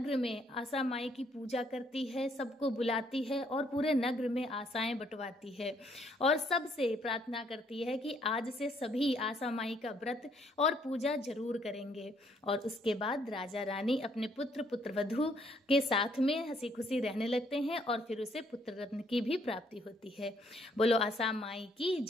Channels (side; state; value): both; normal; correlation 0.68